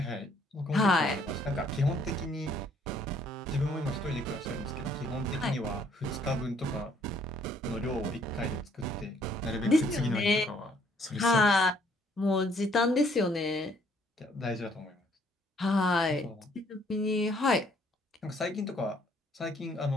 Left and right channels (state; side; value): normal; both; correlation 0.64